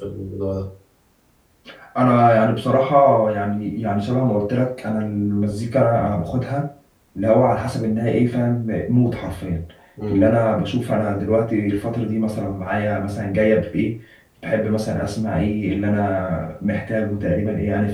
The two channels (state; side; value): identical; both; correlation 1.00